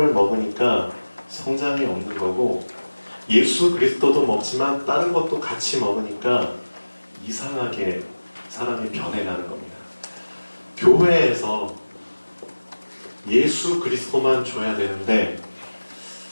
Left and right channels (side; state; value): both; inverted; correlation -1.00